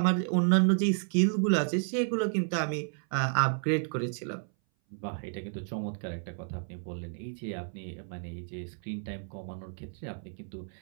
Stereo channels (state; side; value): silent; left; 57 dB below the other